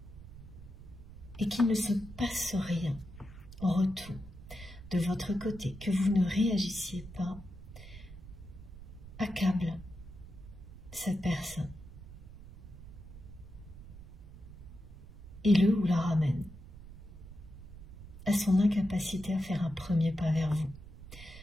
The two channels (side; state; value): right; noise; rumble, 15 dB below the sound